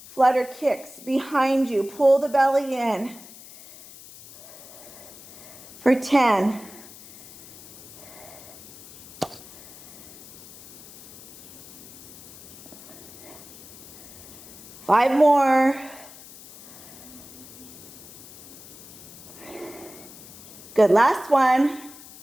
flutter kicks behind you. Pull the belly in for 10. 5 more. Good, last one.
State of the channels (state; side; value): noise; left; hiss, 18 dB below the sound